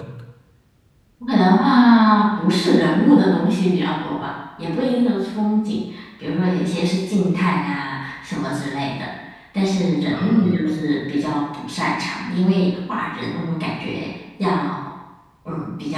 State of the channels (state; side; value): identical; both; correlation 1.00